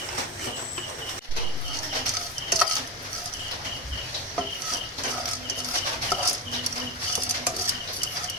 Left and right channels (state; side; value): normal; both; correlation 0.18